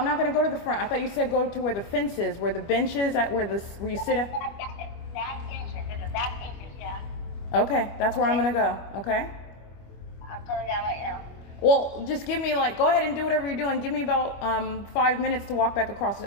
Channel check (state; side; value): late; right; 25 ms